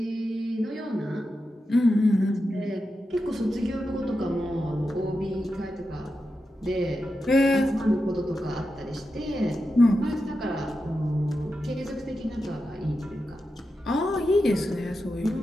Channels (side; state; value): both; normal; correlation 0.89